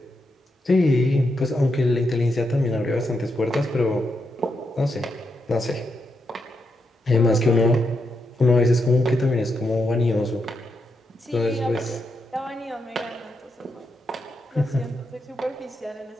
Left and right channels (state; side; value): normal; both; correlation 0.83